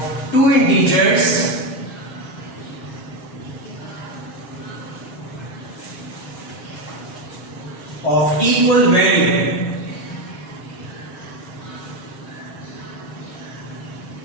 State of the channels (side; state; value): right; late; 6.3 ms